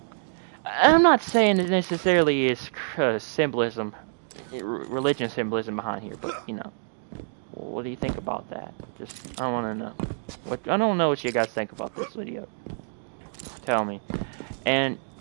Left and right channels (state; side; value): silent; left; digital silence